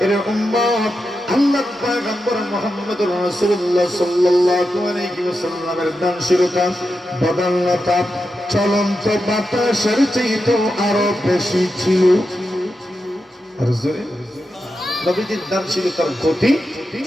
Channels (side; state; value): both; normal; correlation 0.88